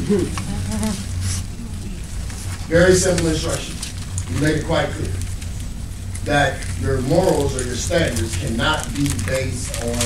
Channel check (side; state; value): both; identical; correlation 1.00